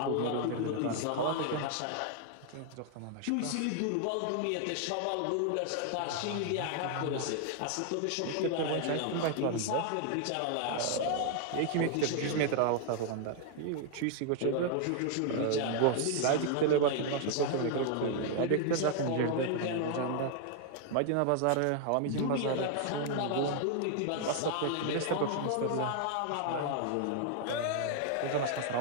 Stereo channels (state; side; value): different; both; correlation 0.00